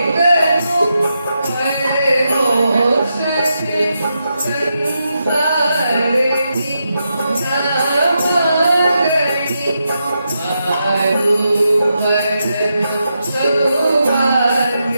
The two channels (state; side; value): inverted; both; correlation -0.85